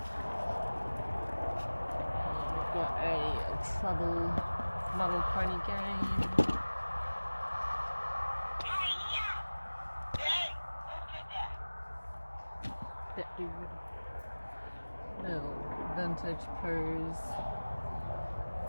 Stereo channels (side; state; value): both; inverted; correlation -1.00